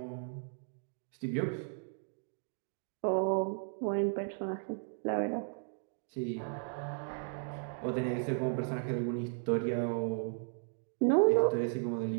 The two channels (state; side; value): silent; left; digital silence